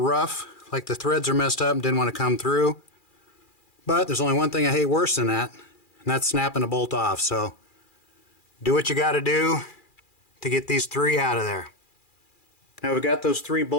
like the threads are messed up and didn't want to come through. But there's only one thing I hate worse than that, and that's snapping a bolt off. So do what you got to do to get these 3 out of there. Now we've got those 3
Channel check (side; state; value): right; late; 2.4 ms